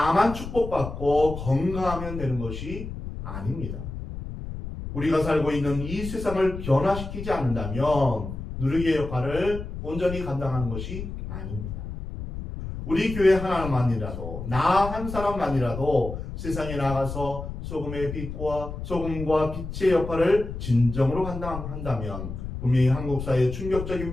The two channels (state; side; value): noise; left; rumble, 8 dB below the sound